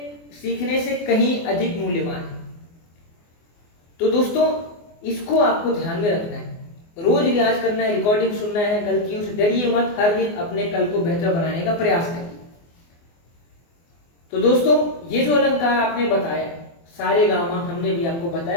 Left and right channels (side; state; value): right; late; 24 ms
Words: सीखने से कहीं अधिक मूल्यवान है। तो दोस्तों इसको आपको ध्यान में रखना है, रोज रियाज करना है, रिकॉर्डिंग सुनना है, गलतियों से डरिए मत, हर दिन अपने कल को बेहतर बनाने का प्रयास करिए। तो दोस्तों ये जो अलंकार आपने बताया, सारे गामा हमने भी आपको